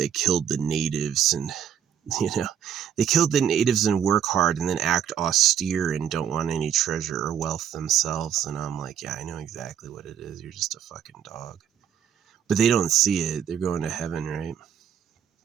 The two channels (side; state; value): left; quieter; 9.1 dB